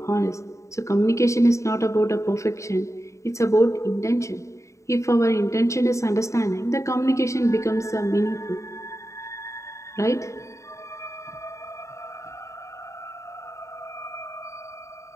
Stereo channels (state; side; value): late; right; 0.14 ms